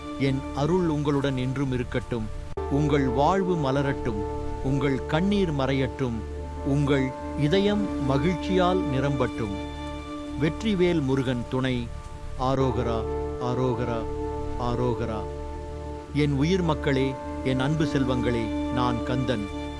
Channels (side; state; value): both; identical; correlation 1.00